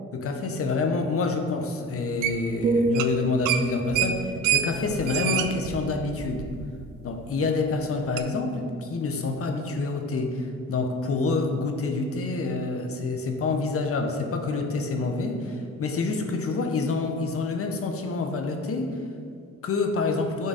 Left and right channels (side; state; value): both; normal; correlation 0.35